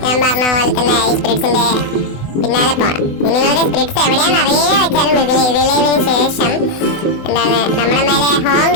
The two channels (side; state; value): right; late; 24 ms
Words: ഞാൻ പറഞ്ഞ പോലെ തന്നെ ഈ സ്പിരിറ്റ്സിൻ്റെ പിന്നാലെ പോകണം. ഇനി നിങ്ങൾക്ക് സ്പിരിറ്റ്സ് എവിടെയാണെന്ന് അറിയുക വെച്ചാലും റിലൈവിന് ശേഷം എന്താണ് നമ്മുടെ മേലെ ഹോങ്